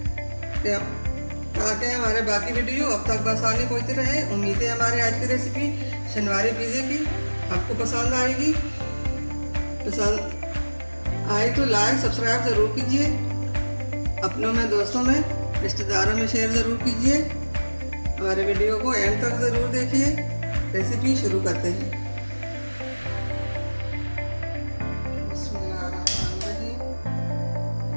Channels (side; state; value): both; inverted; correlation -1.00